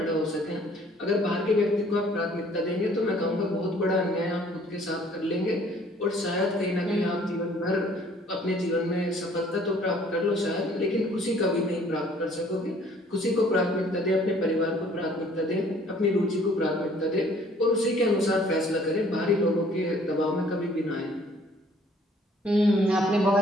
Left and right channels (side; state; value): both; normal; correlation 0.58